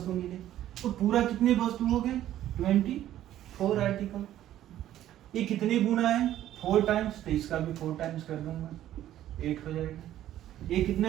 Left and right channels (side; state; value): left; quieter; 12.6 dB